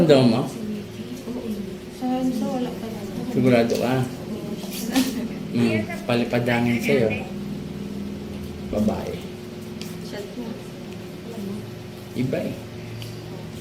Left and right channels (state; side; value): identical; both; correlation 1.00